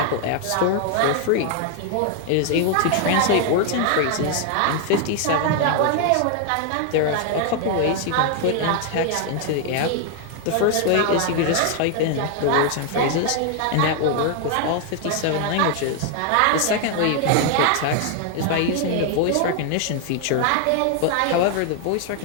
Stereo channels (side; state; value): both; different; correlation 0.00